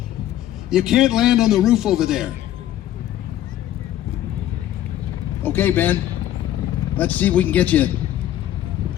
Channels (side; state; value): right; quieter; 12.6 dB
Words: You can't land on the roof over there. Okay, Ben. Let's see if we can get you.